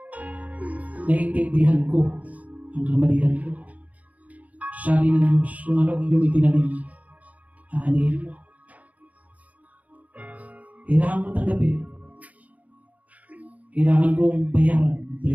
naiintindihan ko ang kamalian ko. Sabi ng Diyos, kung ano ang iyong itinanim, aanihin mo. Kailangan ko tanggapin. Kailangan kong bayaran ang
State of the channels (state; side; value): late; left; 0.072 ms